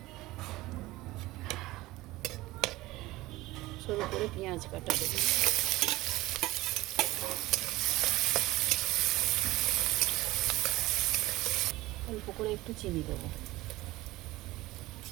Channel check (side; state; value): left; quieter; 18.6 dB